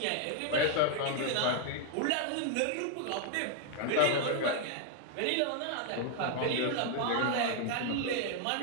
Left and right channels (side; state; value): both; different; correlation 0.00